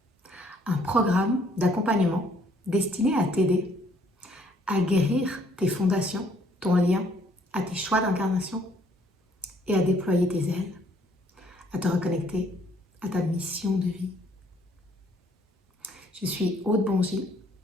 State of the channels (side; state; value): both; normal; correlation 0.64